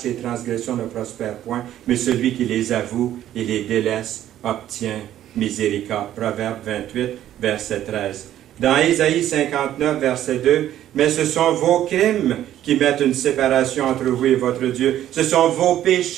transgressions ne prospère point, mais celui qui les avoue et les délaisse obtient miséricorde. Proverbe 28, verset 13. Dans Ésaïe 59, verset 2, « Mais ce sont vos crimes qui mettent une séparation entre vous et votre Dieu. Ce sont vos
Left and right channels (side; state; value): left; quieter; 12.1 dB